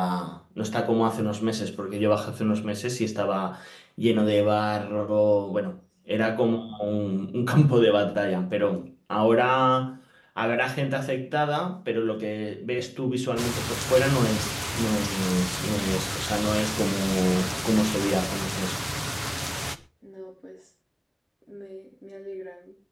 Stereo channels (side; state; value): both; identical; correlation 1.00